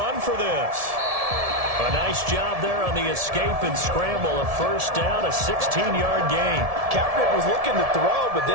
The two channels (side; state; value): left; late; 1.7 ms